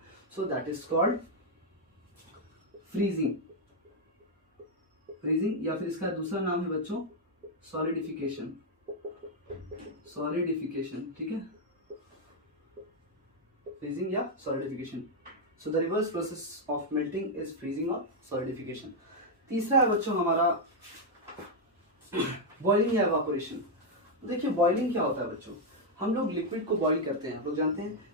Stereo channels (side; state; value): both; normal; correlation 0.00